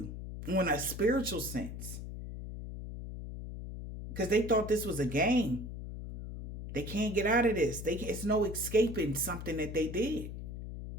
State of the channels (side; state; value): left; noise; hum, 8 dB below the sound